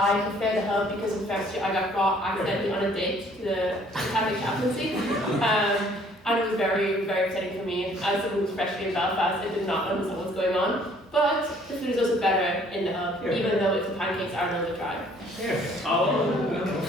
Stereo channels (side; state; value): both; normal; correlation 0.59